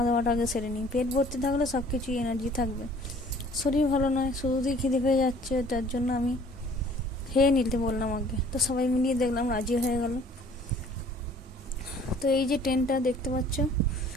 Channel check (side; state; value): both; normal; correlation 0.54